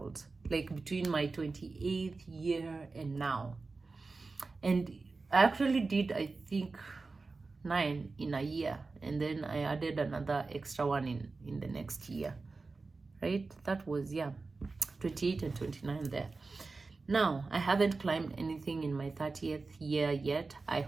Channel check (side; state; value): left; quieter; 3.9 dB